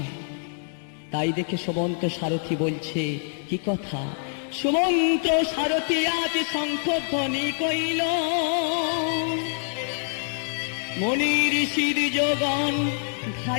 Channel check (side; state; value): right; silent; digital silence